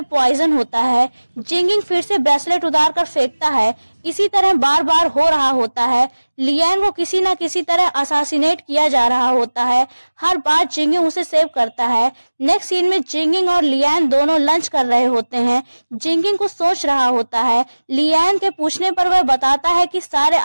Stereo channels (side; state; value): both; inverted; correlation -1.00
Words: पॉइजन होता है। जिंकिंग फिर से ब्रेसलेट उतार कर फेंकता है। इसी तरह बार बार हो रहा होता है। लियान को किसी न किसी तरह असासिनेट किया जा रहा होता है। हर बार जिंकिंग उसे सेव करता है। नेक्स्ट सीन में जिंकिंग और लियान दोनों लंच कर रहे होते हैं। जिंकिंग को सोच रहा होता है। लियान के पूछने पर वह बताता है कि सारे